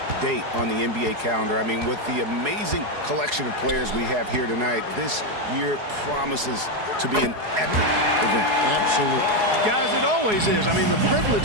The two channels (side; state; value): left; late; 4.8 ms